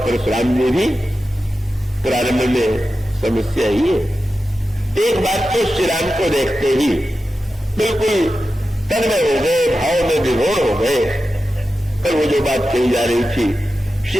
ने भी। प्रारंभ में समस्या ही है। एक बात तो श्री राम को देखते ही बिल्कुल तन्मय हो गए, भाव में विभोर हो गए। पर वो जो बात कही जा रही थी,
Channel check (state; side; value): normal; both; correlation 0.92